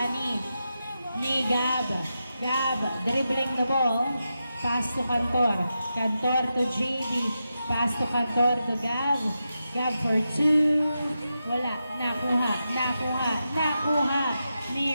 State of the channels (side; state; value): both; inverted; correlation -0.88